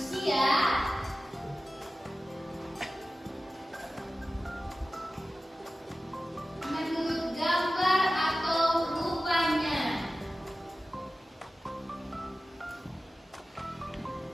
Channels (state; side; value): normal; both; correlation 0.95